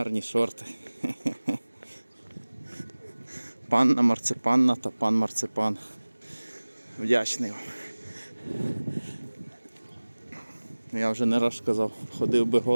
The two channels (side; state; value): both; inverted; correlation -1.00